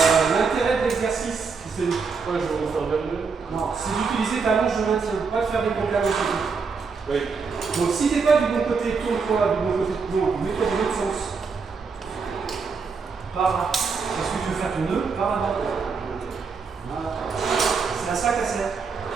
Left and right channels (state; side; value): quieter; left; 5.1 dB